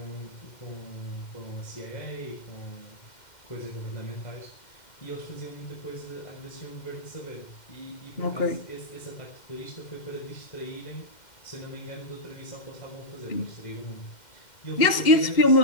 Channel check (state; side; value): late; right; 2.1 ms